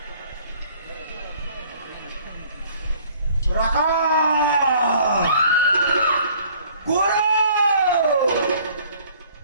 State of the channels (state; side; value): inverted; both; correlation -0.55